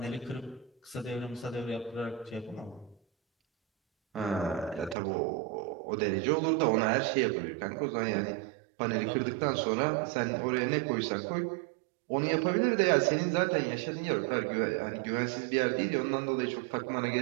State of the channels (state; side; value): drops out; left; at 5.0 s